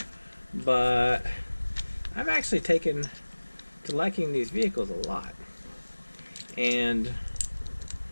But I've actually taken to liking these vehicles a lot. And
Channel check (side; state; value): both; inverted; correlation -1.00